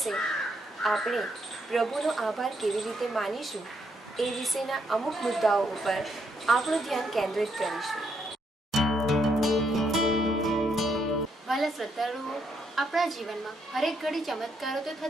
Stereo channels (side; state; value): both; normal; correlation 0.75